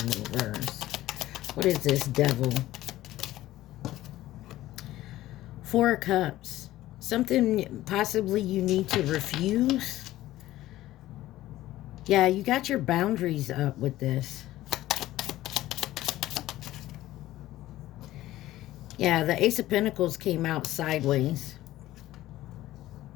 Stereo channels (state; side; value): quieter; right; 15.4 dB